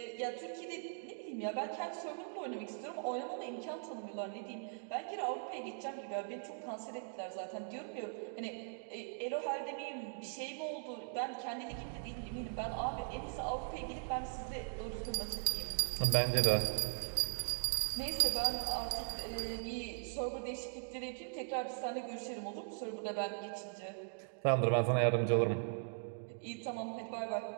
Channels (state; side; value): silent; left; digital silence